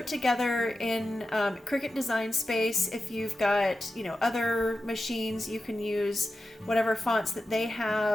together in Cricut Design Space. If you've got, other machines, you can use whatever fonts that they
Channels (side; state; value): both; normal; correlation 0.92